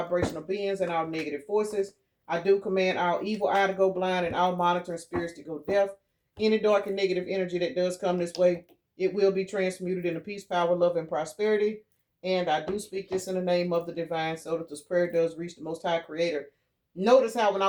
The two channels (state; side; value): identical; both; correlation 1.00